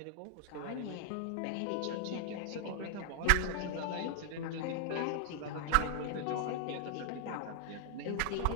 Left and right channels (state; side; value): different; both; correlation 0.00